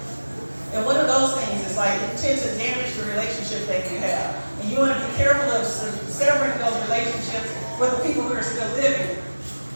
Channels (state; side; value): inverted; both; correlation -1.00